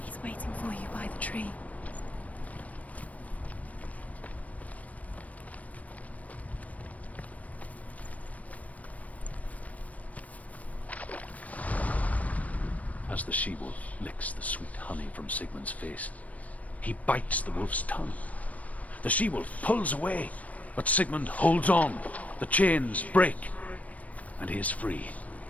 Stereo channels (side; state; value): right; late; 0.070 ms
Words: He's waiting for you by the tree. as the she-wolf licks the sweet honey from Sigmund's face. He bites the wolf's tongue. The she-wolf pulls away, but Sigmund holds on. The chains break, and he is free.